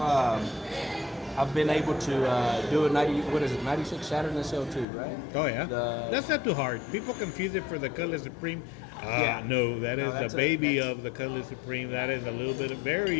I've been able to do a 96 Saturn SL2, right? Oh, yeah? That's not too hard. People confuse it for the Cutlass Supreme. No, that's the baby of the Cutlass Supreme. That is a little bit very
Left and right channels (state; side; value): drops out; right; at 4.9 s